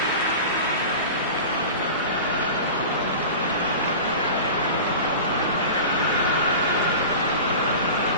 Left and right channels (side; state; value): both; inverted; correlation -0.33